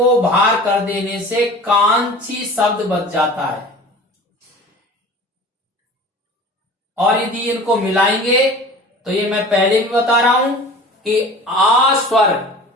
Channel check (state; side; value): normal; both; correlation 0.40